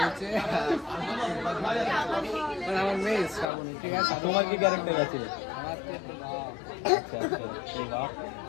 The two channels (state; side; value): drops out; right; at 3.5 s